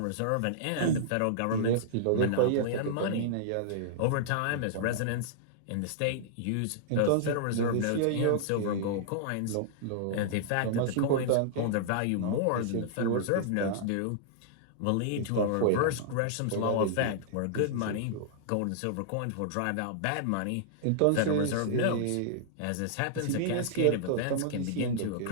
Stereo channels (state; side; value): different; both; correlation -0.02